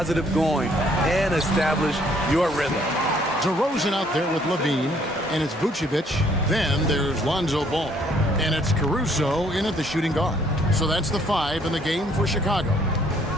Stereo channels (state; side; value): normal; both; correlation 0.64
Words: going and establish your rhythm. DeRozan out there with Levine, and it's Vucevic. Then there's Lonzo Ball. And it's Caruso in at the shooting guard. So that's the 5 in the game for Chicago.